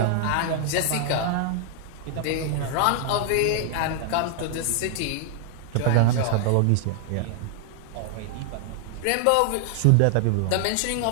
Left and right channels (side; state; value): both; different; correlation 0.00